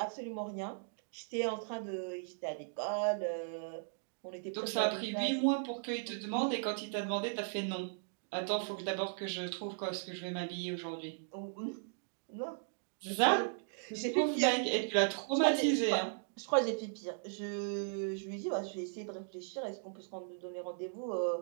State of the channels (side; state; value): left; silent; digital silence